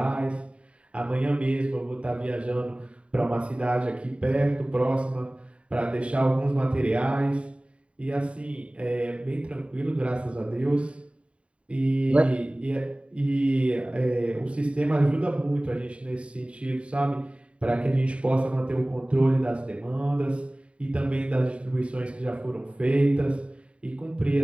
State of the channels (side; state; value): left; late; 0.061 ms